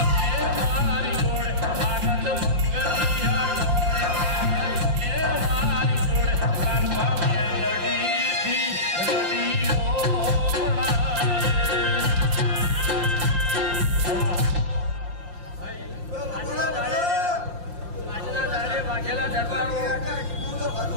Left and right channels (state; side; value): late; left; 5.7 ms